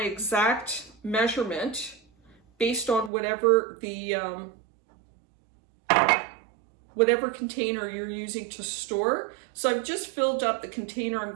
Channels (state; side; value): drops out; left; at 3.1 s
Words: measurement based on whatever the whatever container you're using to store, so I've just filled up the container I'm